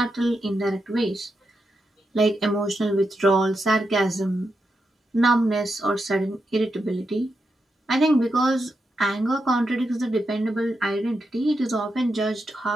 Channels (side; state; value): both; normal; correlation 0.85